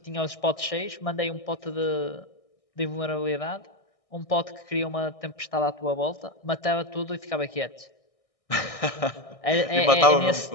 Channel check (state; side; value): late; right; 1.6 ms